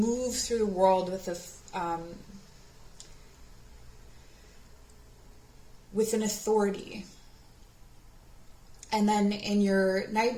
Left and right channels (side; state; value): both; identical; correlation 1.00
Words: through the world with an authority, and then in your